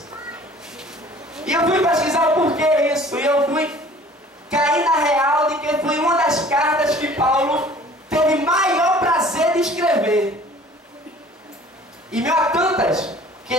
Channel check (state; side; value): normal; both; correlation 0.50